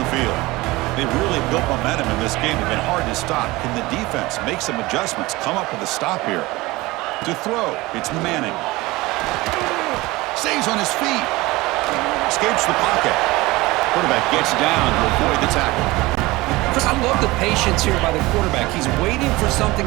field. They've really built momentum in this game. It's been hard to stop. Can the defense make some adjustments, come up with a stop here? To throw, it's Manning. Stays on his feet. Escapes the pocket. Quarterback gets down to avoid the tackle. I love the patience here by the quarterback. He's waiting for something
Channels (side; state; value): left; quieter; 20.8 dB